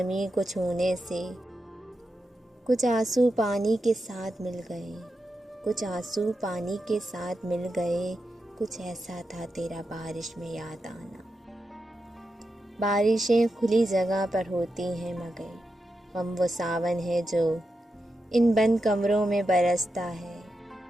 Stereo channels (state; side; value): normal; both; correlation 0.88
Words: को छूने से। कुछ आंसू पानी के साथ मिल गए, कुछ आंसू पानी के साथ मिल गए। कुछ ऐसा था तेरा बारिश में याद आना। बारिशें खुली जगह पर होती हैं मगर हम वो सावन है जो इन बंद कमरों में बरसता है।